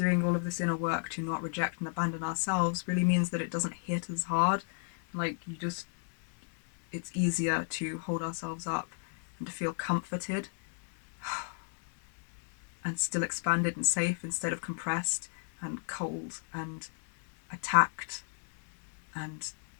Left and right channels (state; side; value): silent; right; digital silence